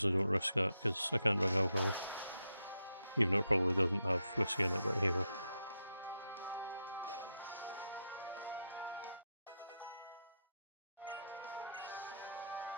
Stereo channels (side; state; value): both; inverted; correlation -0.83